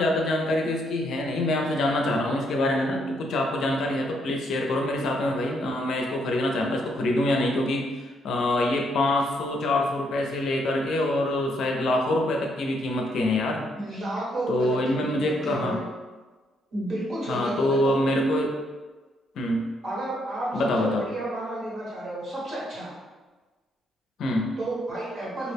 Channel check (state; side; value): normal; both; correlation 0.73